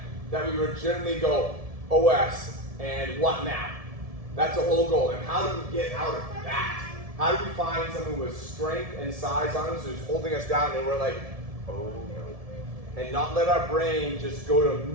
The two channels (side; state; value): left; late; 1.7 ms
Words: That we legitimately go, OS, and what now? That's the whole goal. And how do we get out of that? How do we find someone with strength and size on us who's holding us down and we're like, oh no. And not let our brain just go to